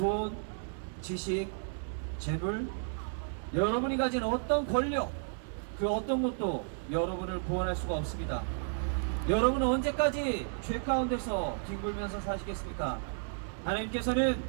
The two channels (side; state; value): left; silent; digital silence